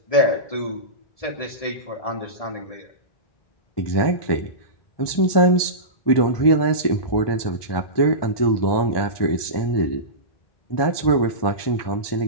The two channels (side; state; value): right; late; 1.2 ms